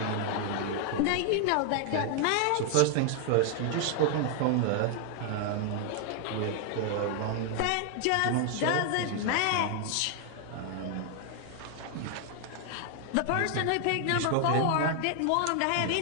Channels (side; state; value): both; different; correlation 0.00